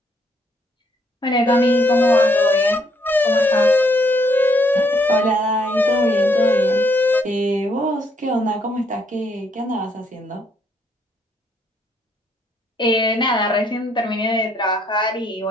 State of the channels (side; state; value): both; normal; correlation 0.71